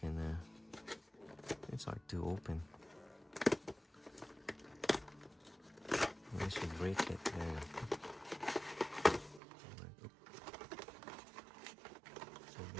It's hard to open. I should break it there. So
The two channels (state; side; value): drops out; left; at 9.4 s